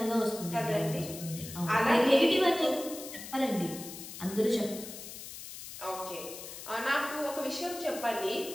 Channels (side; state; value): left; noise; hiss, 11 dB below the sound